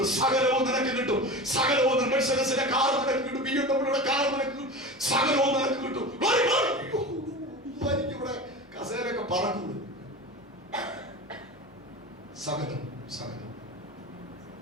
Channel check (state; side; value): normal; both; correlation 0.30